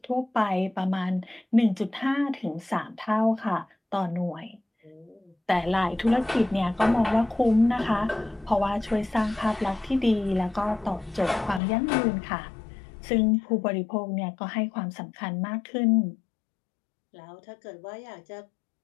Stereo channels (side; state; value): right; drops out; at 11.6 s